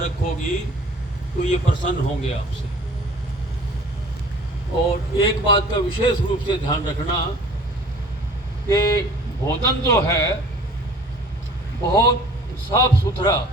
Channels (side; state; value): both; normal; correlation 0.49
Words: रखोगी तो ये प्रसन्न होंगे आपसे। और एक बात का विशेष रूप से ध्यान रखना कि भोजन जो है बहुत साफ सुथरा,